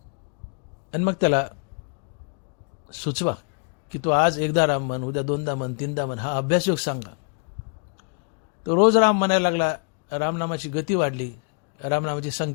आणि मग त्याला सुचवा की तू आज एकदा राम म्हण, उद्या 2दा म्हण, 3दा म्हण. हा अभ्यासयोग सांगा. तो रोज राम म्हणायला लागला. रामनामाची गती वाढली, रामनामाची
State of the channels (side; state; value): right; quieter; 39.9 dB